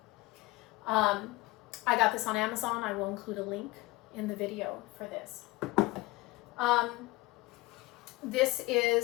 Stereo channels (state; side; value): quieter; right; 20.7 dB